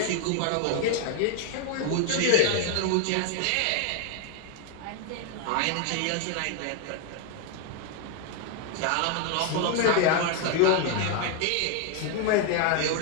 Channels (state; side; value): different; both; correlation 0.01